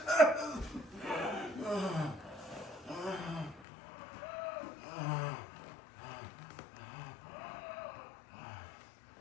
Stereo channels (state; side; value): drops out; right; at 3.7 s